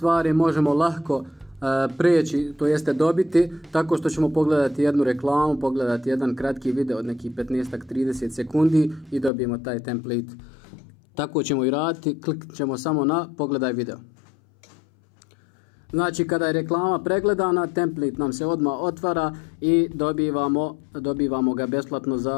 možemo lako preći, to jeste dobiti, tako što ćemo pogledati jednu reklamu, pogledati jedan kratki video od nekih 15-30 sekundi i dobijemo taj template. Tako ćemo i raditi, kliknut ćemo samo na pogledaj video. Znači kada je reklama pregledana, template nam se odmah otvara i dobivamo ga besplatno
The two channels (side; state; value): right; drops out; at 9.3 s